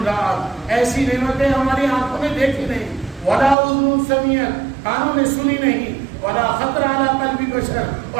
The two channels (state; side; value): drops out; left; at 3.6 s